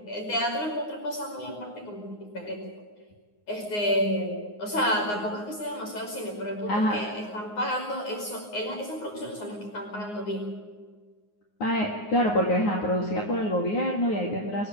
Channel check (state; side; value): late; right; 9.6 ms